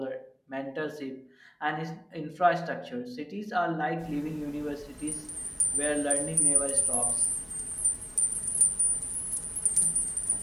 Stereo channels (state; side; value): identical; both; correlation 1.00